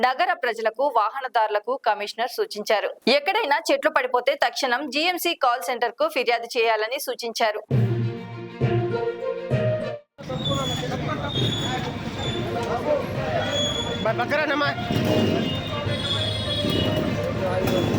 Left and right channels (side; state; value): both; identical; correlation 1.00